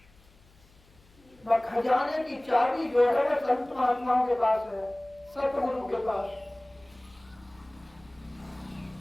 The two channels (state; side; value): noise; left; hum, 28 dB below the sound